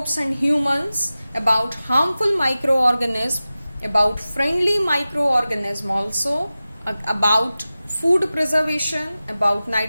and humans, about harmful microorganism, about friendly microorganism also, about food preservation, about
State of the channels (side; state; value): both; inverted; correlation -0.96